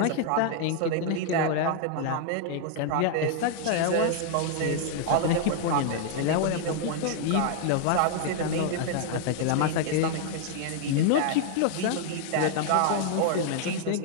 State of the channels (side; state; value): both; different; correlation 0.00